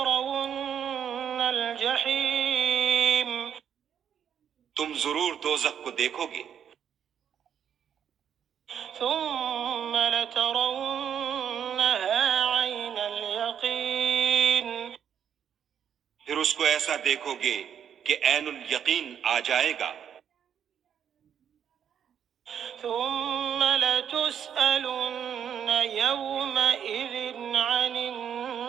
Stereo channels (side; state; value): left; quieter; 8.6 dB